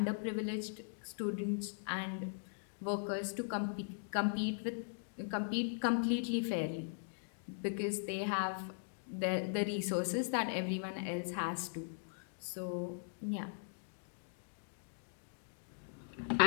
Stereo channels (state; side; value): silent; right; digital silence